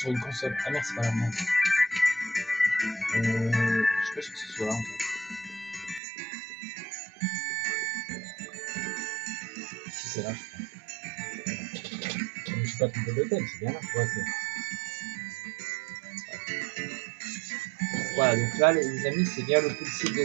une console. Ah merde, c'est pas la même. Je suis pas sûr que ce soit là en fait. Si c'est là, je crois. Je ne suis pas trompé d'hôtel, c'est bien là. Ouais, voilà, donc là, les amis, c'est bien le policier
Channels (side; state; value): left; drops out; at 6.0 s